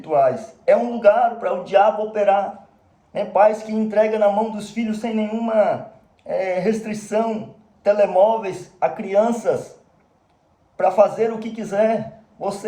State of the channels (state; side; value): identical; both; correlation 1.00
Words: É um lugar para o diabo operar. Pais que entregam na mão dos filhos sem nenhuma restrição telemóveis a crianças para fazer o que quiser.